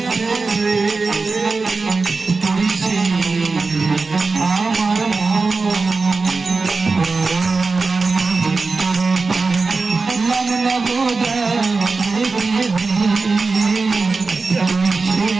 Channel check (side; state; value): left; quieter; 4.1 dB